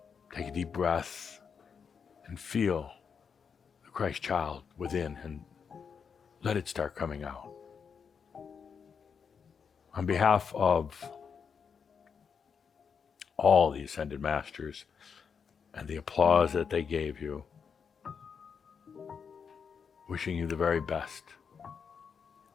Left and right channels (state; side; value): quieter; right; 6.4 dB